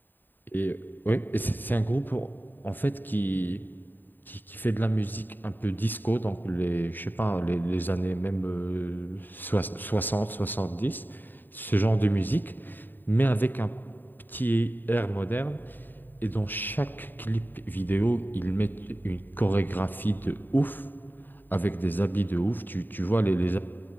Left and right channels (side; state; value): right; late; 0.091 ms